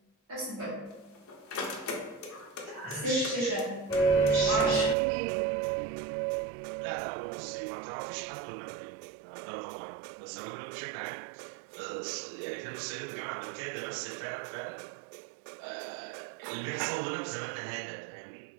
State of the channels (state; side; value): drops out; left; at 5.0 s